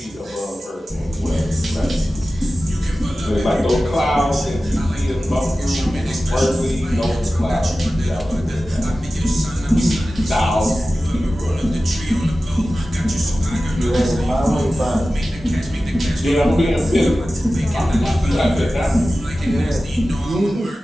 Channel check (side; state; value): both; normal; correlation 0.95